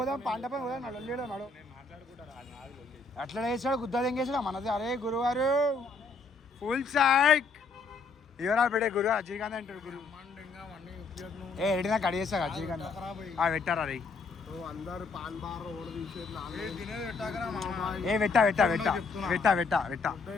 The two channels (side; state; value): right; quieter; 4.1 dB